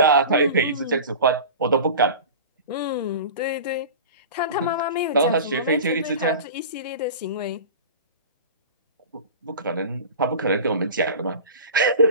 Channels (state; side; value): inverted; both; correlation -0.35